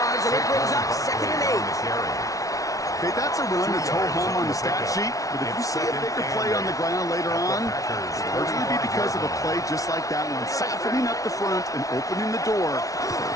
and it brings up 2nd and 8. Okay, that's a run that's ho-hum on the stat sheet, but if you see a bigger play on the ground later on, it'll largely be because of a play just like that one, softening up the front and opening the door for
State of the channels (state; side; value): late; right; 0.17 ms